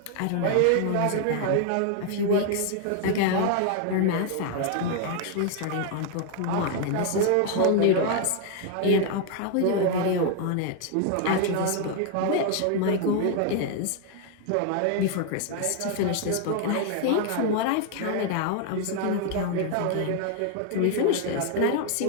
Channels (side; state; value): both; different; correlation 0.00